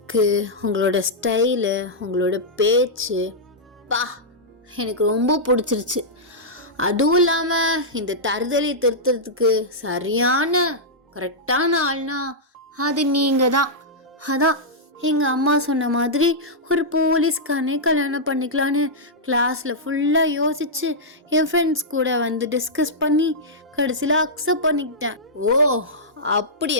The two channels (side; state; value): both; normal; correlation -0.09